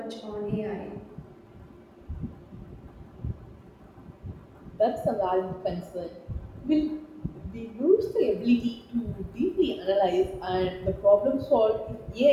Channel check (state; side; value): identical; both; correlation 1.00